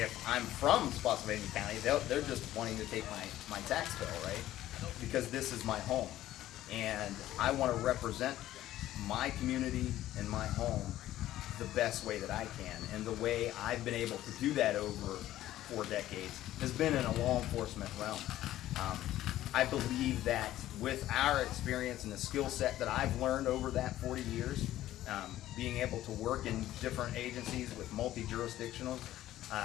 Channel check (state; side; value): quieter; right; 14.0 dB